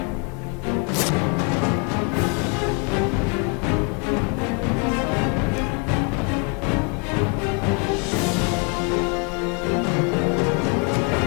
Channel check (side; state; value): right; quieter; 32.6 dB